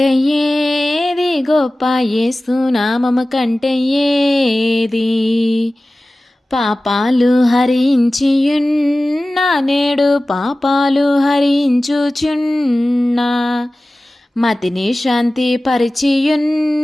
ఏది గొప్ప, యేసునామము కంటే ఏది, పాపాలు హరించియున్నా నేడు పాపాలు హరించుచున్నా, మతిని శాంతి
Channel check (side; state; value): both; normal; correlation 0.97